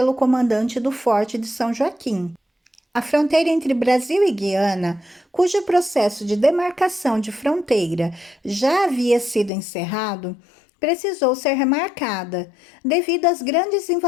comandante do Forte de São Joaquim. A fronteira entre Brasil e Guiana, cujo processo de demarcação de fronteira já havia sido encerrado, precisou ser remarcada, devido às grandes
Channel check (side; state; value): right; drops out; at 9.5 s